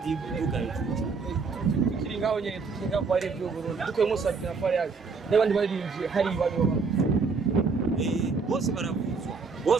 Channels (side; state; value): left; quieter; 4.7 dB